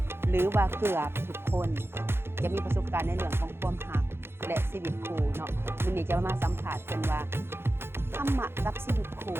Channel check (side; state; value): left; late; 0.11 ms